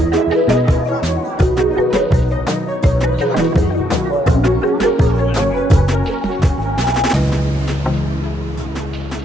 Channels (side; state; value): both; normal; correlation 0.75